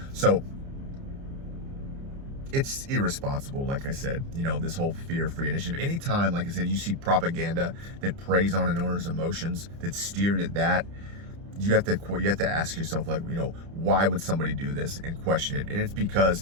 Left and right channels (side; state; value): left; late; 30 ms